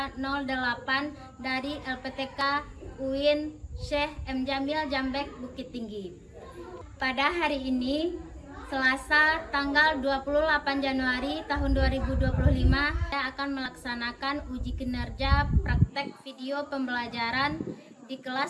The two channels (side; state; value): both; identical; correlation 1.00